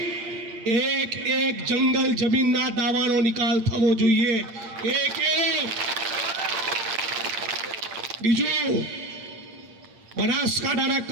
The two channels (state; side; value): late; left; 8.7 ms